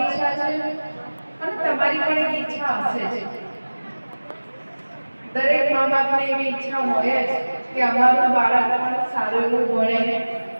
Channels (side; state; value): both; inverted; correlation -1.00